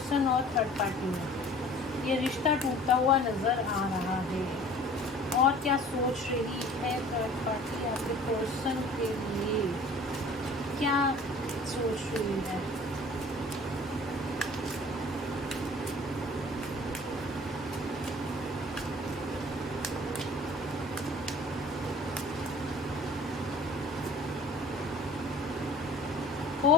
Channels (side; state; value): both; normal; correlation 0.48